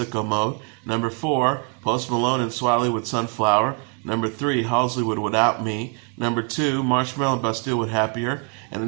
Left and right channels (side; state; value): left; quieter; 32.9 dB